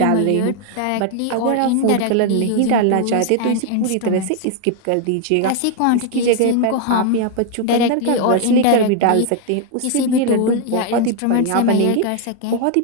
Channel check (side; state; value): both; different; correlation 0.00